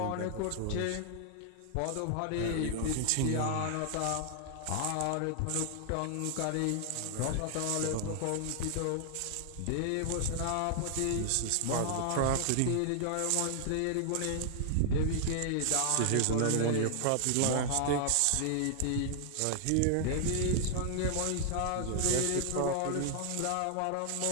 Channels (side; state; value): both; different; correlation 0.00